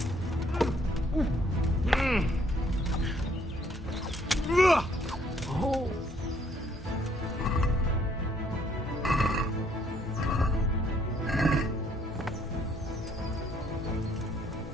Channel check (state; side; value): normal; both; correlation 0.66